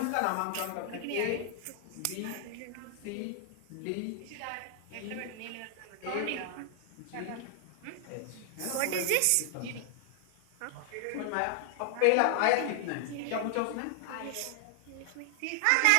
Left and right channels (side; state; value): both; different; correlation 0.00